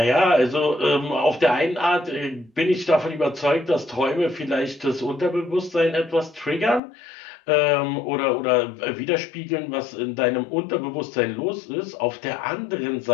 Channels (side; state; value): right; drops out; at 6.8 s